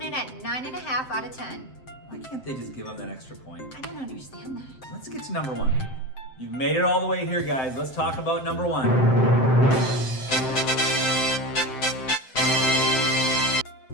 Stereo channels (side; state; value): right; late; 7.7 ms